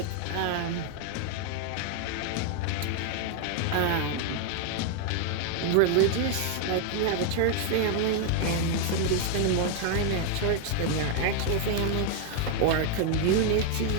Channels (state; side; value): different; both; correlation 0.00